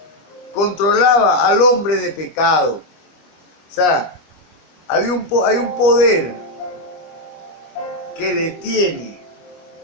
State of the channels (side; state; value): right; late; 25 ms